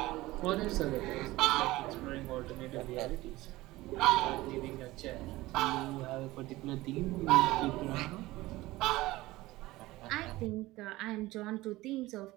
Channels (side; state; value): left; quieter; 18.6 dB